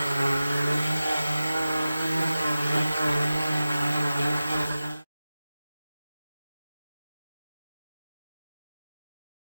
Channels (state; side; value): inverted; both; correlation -0.95